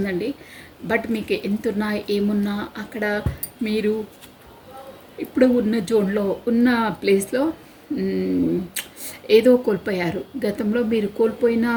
బట్ మీకు ఎంతున్నా ఏమున్నా అక్కడ మీరు ఇప్పుడు ఉన్న జోన్లో, ఉన్న ప్లేస్లో ఏదో కోల్పోయారు. గతంలో మీరు కోల్పోయిన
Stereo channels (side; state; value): both; identical; correlation 1.00